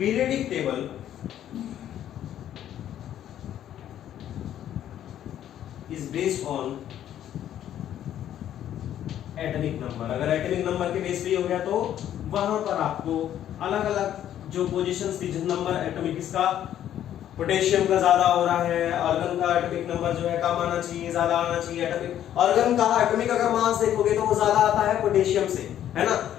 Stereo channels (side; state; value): right; quieter; 11.1 dB